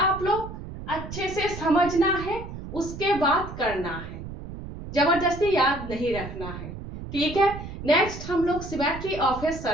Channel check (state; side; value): noise; right; rumble, 10 dB below the sound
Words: लोग? अच्छे से समझना है, उसके बाद करना है, जबरदस्ती याद नहीं रखना है। ठीक है। नेक्स्ट हम लोग सिमेट्री ऑफ ए